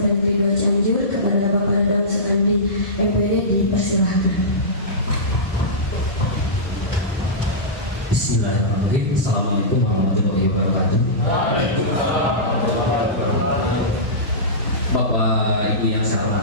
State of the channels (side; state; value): both; normal; correlation -0.18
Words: Negeri 2 Cianjur kepada Bapak Dadang Sekandi MPD, dipersilahkan. Bismillahirrahmanirrahim. Assalamualaikum warahmatullahi wabarakatuh. Bapak Ibu yang saya